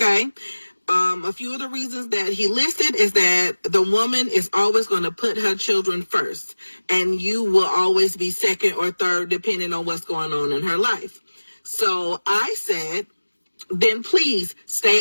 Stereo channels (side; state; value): both; inverted; correlation -1.00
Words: A few of the reasons that he listed is that the woman is always going to put her children first, and you will always be second or third depending on what's going on in her life. So I said, then please stay